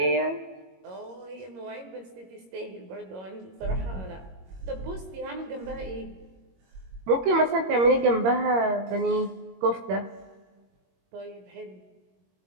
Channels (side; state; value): left; late; 21 ms